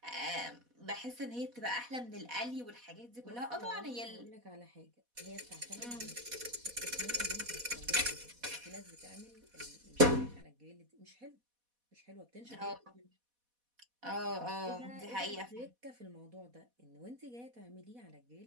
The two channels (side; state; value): left; late; 4.1 ms